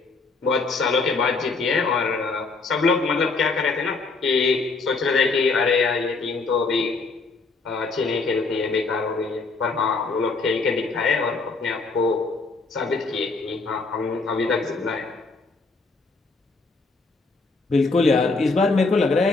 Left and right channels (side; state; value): right; quieter; 4.0 dB